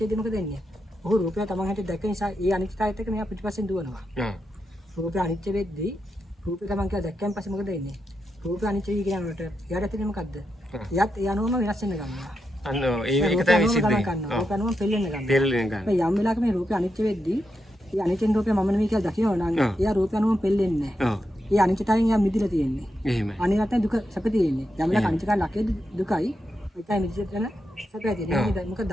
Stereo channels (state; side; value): normal; both; correlation 0.85